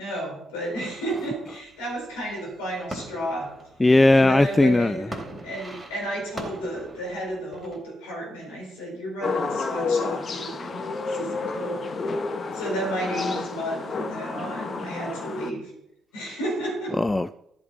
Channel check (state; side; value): normal; both; correlation 0.87